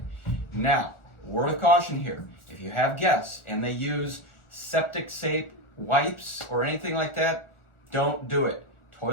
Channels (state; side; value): late; right; 1.4 ms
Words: Now, word of caution here. If you have guests and they use septic safe wipes or anything like that, don't do it.